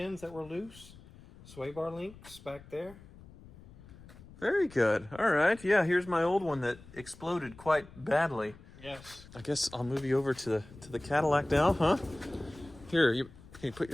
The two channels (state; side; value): noise; left; rumble, 20 dB below the sound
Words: that were loose. Sway bar links back there. Very good. All right. Yeah, here's my old one that exploded quite badly. Yes. I guess I'll move you over to the Cadillac now, huh? Here, can you put